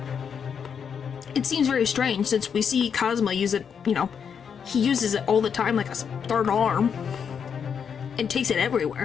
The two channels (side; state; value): right; quieter; 7.1 dB